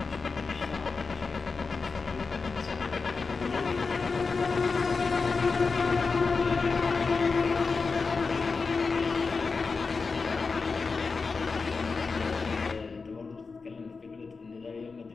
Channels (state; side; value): quieter; right; 4.5 dB